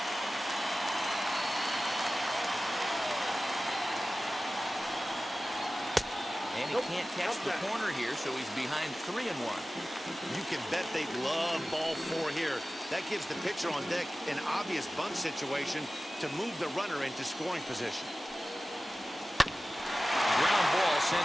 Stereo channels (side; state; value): both; normal; correlation 0.96